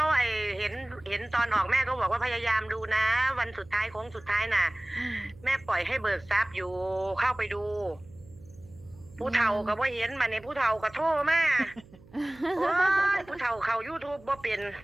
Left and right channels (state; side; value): noise; right; hum, 24 dB below the sound